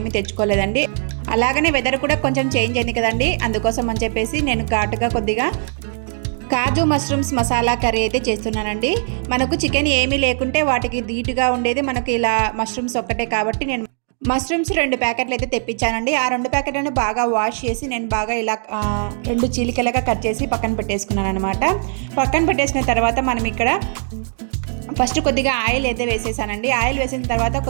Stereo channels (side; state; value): left; silent; digital silence